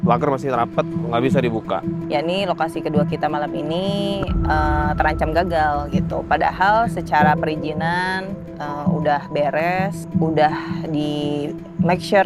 pagar masih rapat, nggak bisa dibuka. Ya, ini lokasi kedua kita malam ini terancam gagal gitu. Padahal secara perizinan udah beres, udah di make sure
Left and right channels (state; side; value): identical; both; correlation 1.00